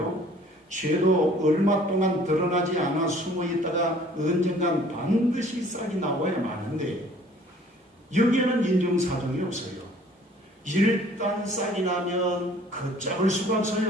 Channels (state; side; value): normal; both; correlation 0.54